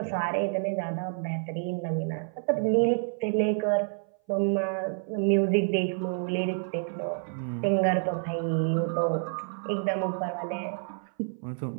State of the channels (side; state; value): left; silent; 58 dB below the other